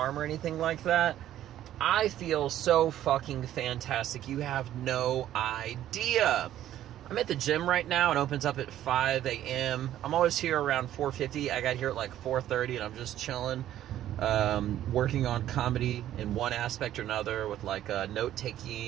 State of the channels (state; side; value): quieter; left; 12.3 dB